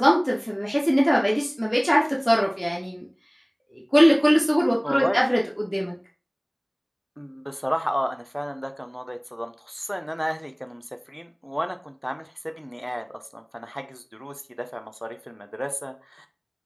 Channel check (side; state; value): both; identical; correlation 1.00